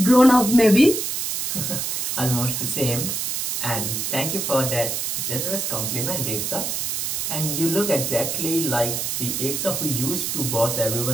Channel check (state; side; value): noise; right; hiss, 1 dB below the sound